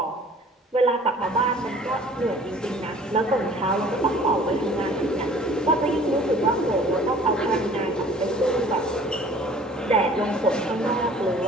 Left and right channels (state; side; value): normal; both; correlation 0.50